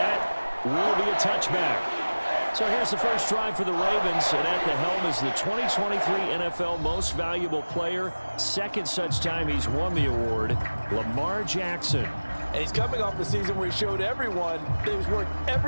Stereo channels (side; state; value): both; inverted; correlation -1.00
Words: will be a touchback. So here's the first drive for the Ravens, and at the helm is the 2023 NFL Most Valuable Player. Second such time he's won the award, Lamar Jackson. And he's coming off a season where he showed everyone that he was worth